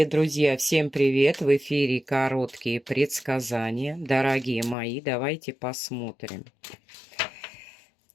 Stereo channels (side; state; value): right; drops out; at 4.8 s